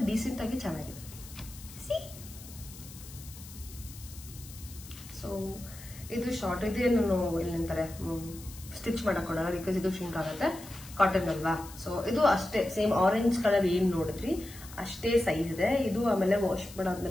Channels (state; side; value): noise; left; hiss, 17 dB below the sound